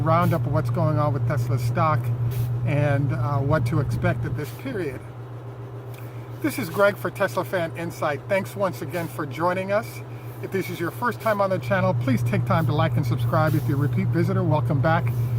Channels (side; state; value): both; identical; correlation 1.00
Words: of what's going on with Tesla stock and what to expect at this period. This is Greg for Teslafaninsight. Thanks once again for joining us. If this is your first time on the channel, please take time to like and subscribe. If you're a repeat visitor, welcome back.